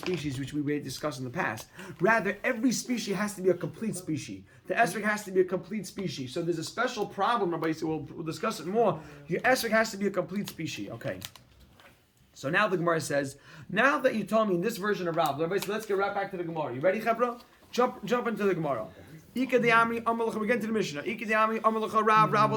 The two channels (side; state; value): both; identical; correlation 1.00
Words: which we discussed in the past. Rather, every species has to be a complete species. The esrog has to be a complete species. So there's a special problem, Rabbi. So we'll discuss it more. Your esrog has to be a complete species. Okay. So now the Gemara says, now that you told me in this version of Rav, Rabbi said, let's get right back to the Gemara. You ready, Chebra? Jump into the Gemara. Ika de'ami amalcha. We get into the Mishnah. Ika de'ami amalcha Rav. Rav